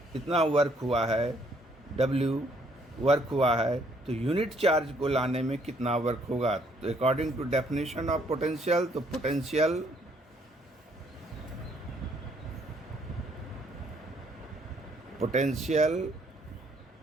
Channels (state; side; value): normal; both; correlation 0.67